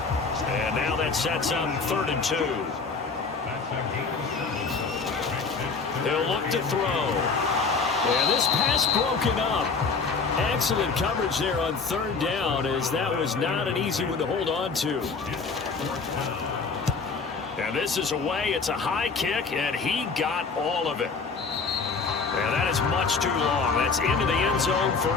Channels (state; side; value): quieter; right; 4.7 dB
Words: And now that sets up 3rd and 2. They'll look to throw. And this pass broken up. Excellent coverage there on 3rd down, as that was not an easy one to hold on to. And this is away. It's a high kick, and he got all of it. And that is much too long. That's into the end zone for